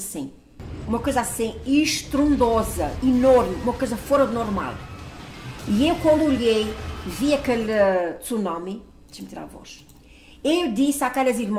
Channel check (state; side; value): identical; both; correlation 1.00